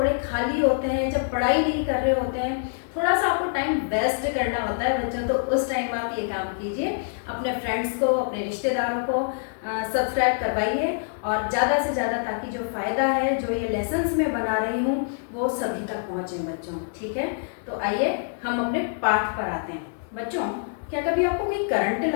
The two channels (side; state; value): right; silent; 61 dB below the other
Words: खाली होते हैं, जब पढ़ाई नहीं कर रहे होते हैं, थोड़ा सा आपको टाइम वेस्ट करना होता है बच्चों, तो उस टाइम आप ये काम कीजिए, अपने फ्रेंड्स को, अपने रिश्तेदारों को सब्सक्राइब करवाइए और ज़्यादा से ज़्यादा, ताकि जो फ़ायदा है, जो ये लेसन्स मैं बना रही हूँ, वो सभी तक पहुँचे बच्चों। ठीक है, तो आइए हम अपने पाठ पर आते हैं। बच्चों, क्या कभी आपको कोई करंट